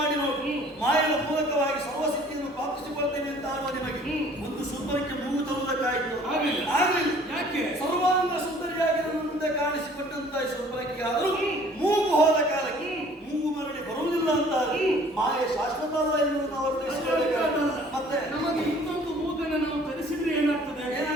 ನೋಡಿ, ಮಾಯದ ಮೂಲಕವಾಗಿ ಸರ್ವಸಿದ್ಧಿಯನ್ನು ಪ್ರಾಪ್ತಿಸಿಕೊಳ್ತೇನೆ ಅಂತ ಆಡುವ ನಿಮಗೆ ಒಂದು ಶೂರ್ಪನಖೆ ಮೂಗು ತರುವುದಕ್ಕಾಯಿತು? ಆಗಲಿಲ್ಲ. ಯಾಕೆ? ಸರ್ವಾಂಗ ಸುಂದರಿಯಾಗಿ ನನ್ನ ಮುಂದೆ ಕಾಣಿಸಿಕೊಟ್ಟಂತ ಶೂರ್ಪನಖೆಗೆ ಆದರೂ ಮೂಗು ಹೋದ ಕಾಲಕ್ಕೆ ಮೂಗು ಮರಳಿ ಬರುವುದಿಲ್ಲ ಅಂತ ಮಾಯೆ ಶಾಶ್ವತ ಅಲ್ಲ ಎನ್ನುವುದು ಅವರು ಮತ್ತೆ ನಮಗೆ ಇನ್ನೊಂದು ಮೂಗನ್ನು ನಾವು ಧರಿಸಿದ್ರೆ ಏನಾಗ್ತದೆ?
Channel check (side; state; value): both; normal; correlation 0.54